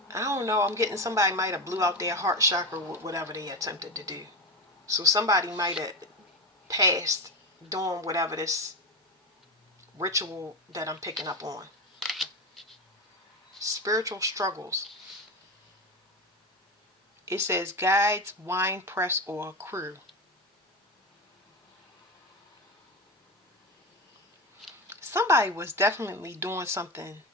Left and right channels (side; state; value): both; normal; correlation 0.19